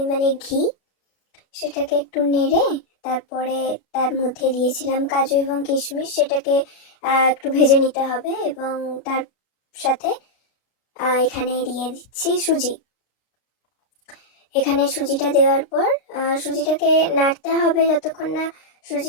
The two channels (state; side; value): late; right; 32 ms